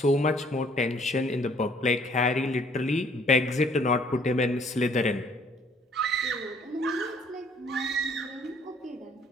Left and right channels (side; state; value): both; normal; correlation 0.60